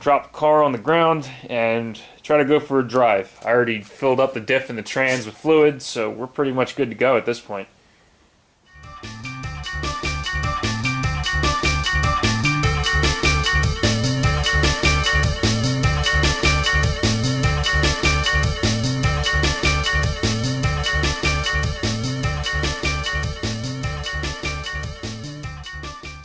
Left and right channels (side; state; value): both; identical; correlation 1.00